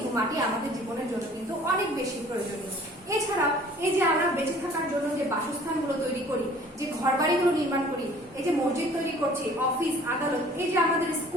মাটি আমাদের জীবনের জন্য কিন্তু অনেক বেশি প্রয়োজনীয়। এছাড়াও এই যে আমরা বেঁচে থাকার জন্য যে বাসস্থানগুলো তৈরি করি, যে ঘরবাড়িগুলো নির্মাণ করি, এই যে মসজিদ তৈরি করছি, অফিস আদালত, এই যে আমাদের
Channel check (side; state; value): both; normal; correlation 0.52